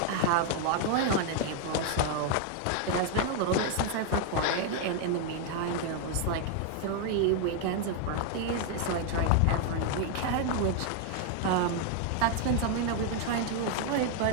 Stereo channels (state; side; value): different; both; correlation 0.00